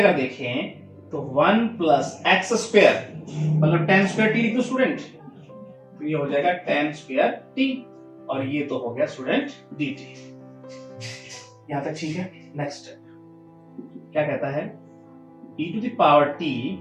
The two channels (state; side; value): identical; both; correlation 1.00